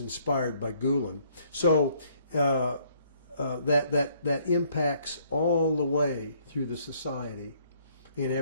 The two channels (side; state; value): both; inverted; correlation -0.65